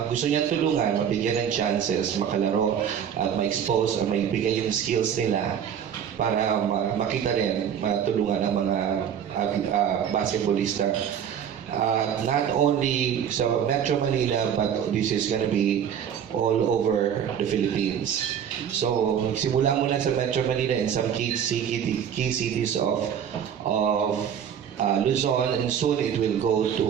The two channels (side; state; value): left; quieter; 8.7 dB